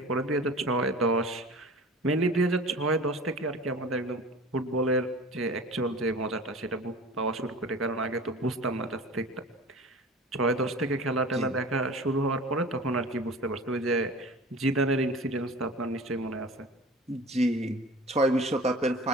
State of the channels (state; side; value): normal; both; correlation 0.39